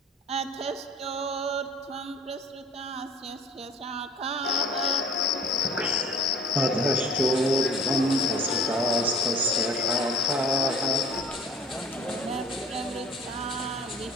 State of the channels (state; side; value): normal; both; correlation 0.46